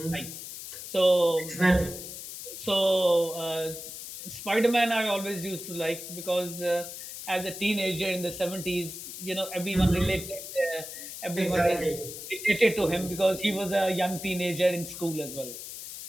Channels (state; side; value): noise; left; hiss, 10 dB below the sound